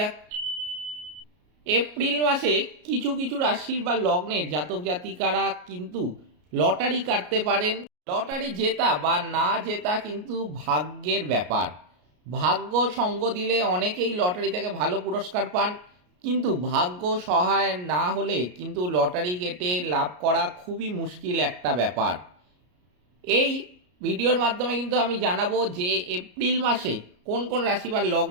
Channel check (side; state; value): left; late; 33 ms